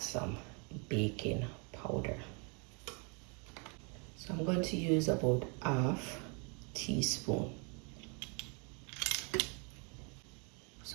some baking powder. So I'm going to use about half teaspoon.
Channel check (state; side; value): quieter; left; 34.9 dB